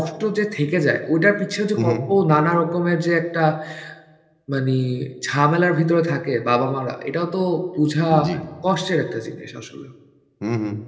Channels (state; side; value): identical; both; correlation 1.00